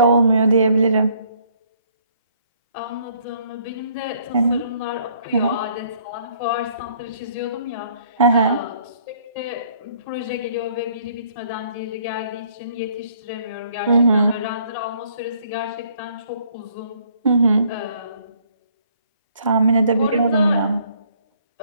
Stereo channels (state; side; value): inverted; both; correlation -0.64